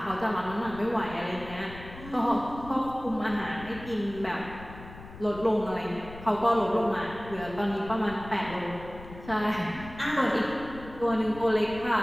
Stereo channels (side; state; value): left; noise; rumble, 15 dB below the sound